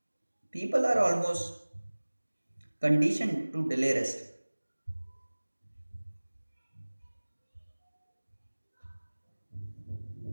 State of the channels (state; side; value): inverted; both; correlation -1.00